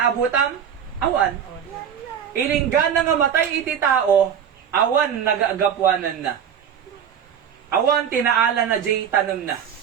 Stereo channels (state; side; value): quieter; left; 8.4 dB